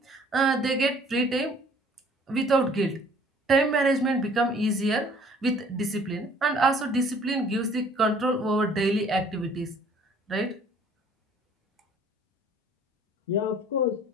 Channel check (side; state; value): both; normal; correlation 0.55